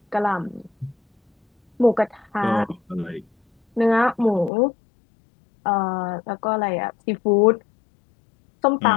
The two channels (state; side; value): drops out; right; at 4.5 s